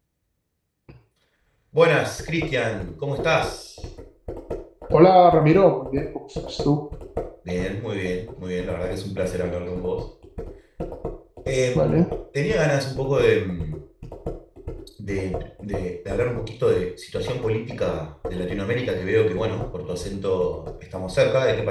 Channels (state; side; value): identical; both; correlation 1.00